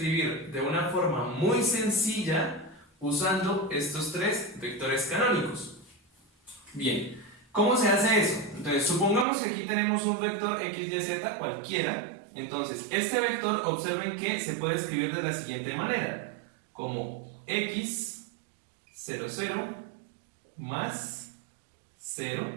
de una forma muy sencilla usando estos tres vectores canónicos. Bien, ¿cómo se hace eso? Entonces, supongamos que aquí tenemos un vector x, y, z cualquiera. Entonces, este vector, observen que se puede escribir de la siguiente manera, como x, 0, 0, más 0,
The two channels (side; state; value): left; drops out; at 9.2 s